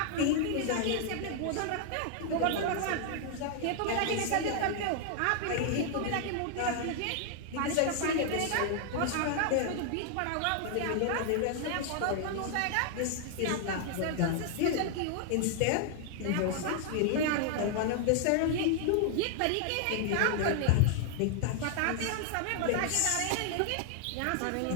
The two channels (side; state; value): both; different; correlation 0.00